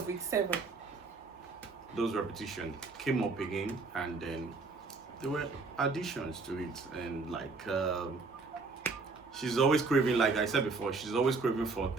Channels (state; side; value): quieter; left; 4.0 dB